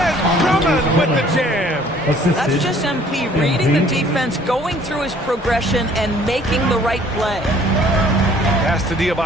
Drummond with the jam. That's just MP reading the defense, going through his progression, and making the right play. Pass to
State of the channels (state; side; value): normal; both; correlation 0.57